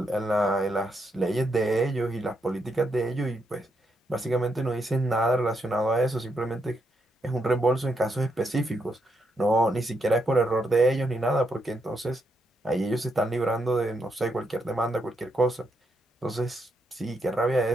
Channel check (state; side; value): normal; both; correlation 0.79